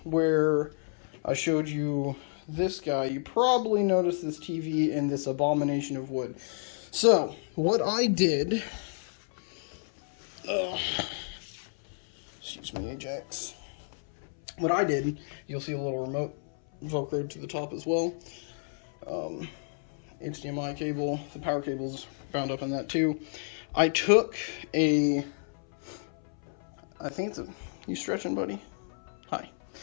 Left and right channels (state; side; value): silent; right; 57 dB below the other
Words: where I showed you this guy, you probably noticed this TV and this abomination of wood. So, what I did Excuse me, Ajax. What I did, you'll see a little remote velcroed to the top as well. HDMI cable, the power cable's bound up in that too. I took I think it's a, you stretching, buddy? Hi.